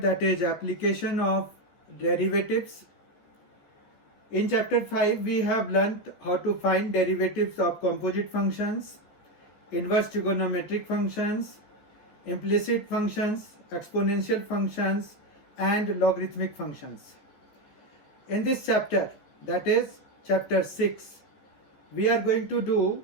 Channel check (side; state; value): right; late; 15 ms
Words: that is application of derivatives. In chapter 5 we have learnt how to find derivatives of composite functions, inverse trigonometric functions, implicit functions, exponential functions and logarithmic functions. In this chapter, that is chapter 6, we